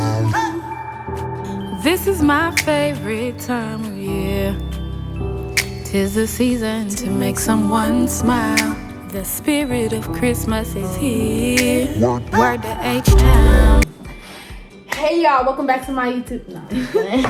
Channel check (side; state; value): both; identical; correlation 1.00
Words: This is my favorite time of year. 'Tis the season to make someone smile. The spirit of Christmas is here. Word to H-Town. Hey y'all, welcome back to my YouTube.